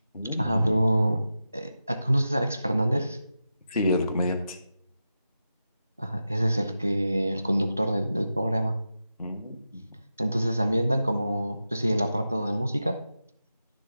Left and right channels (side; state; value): both; inverted; correlation -0.90